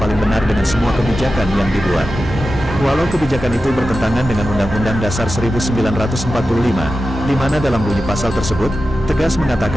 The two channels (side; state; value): both; normal; correlation 0.93